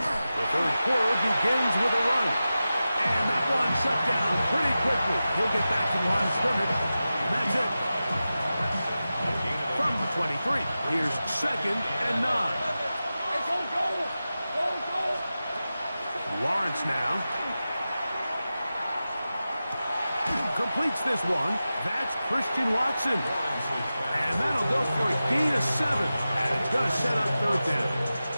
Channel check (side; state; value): both; inverted; correlation -0.94